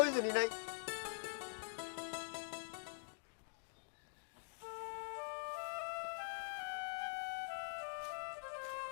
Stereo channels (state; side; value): silent; right; digital silence